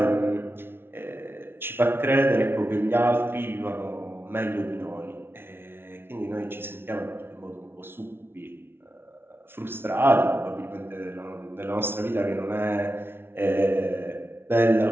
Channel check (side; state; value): left; late; 0.11 ms